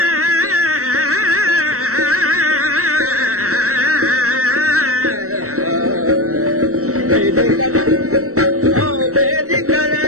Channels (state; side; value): late; left; 0.64 ms